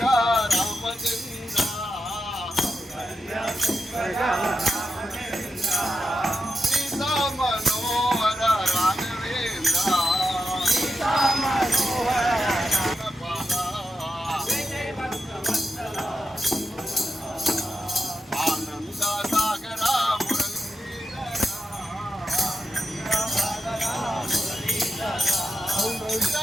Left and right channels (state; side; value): normal; both; correlation 0.88